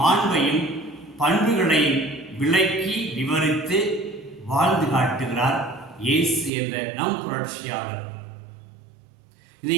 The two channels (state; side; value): drops out; left; at 6.5 s